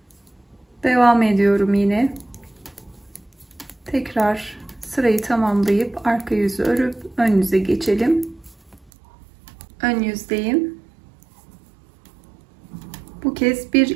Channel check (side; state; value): left; drops out; at 8.9 s